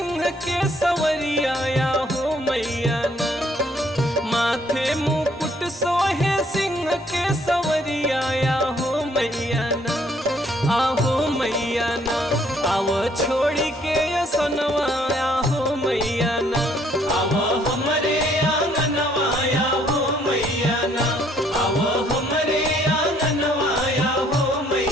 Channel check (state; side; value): normal; both; correlation 0.65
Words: के सवरिया या हो मैया ना, माथे मुकुट सोहे सिंह के सवरिया या हो मैया ना, आहो मैया ना, आव छोड़ी के असनवा या हो मैया ना, आव हमरे आंगनवा या हो मैया ना, आव हमरे आंगनवा या हो